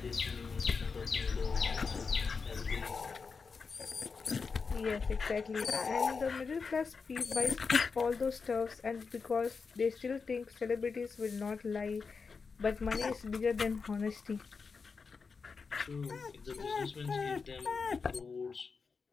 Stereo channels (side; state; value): right; quieter; 5.0 dB